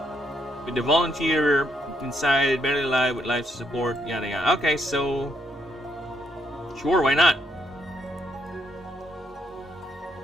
with the volunteer inside, barely alive with life support, yada yada. Okay, so sure, why not?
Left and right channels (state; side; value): normal; both; correlation 0.73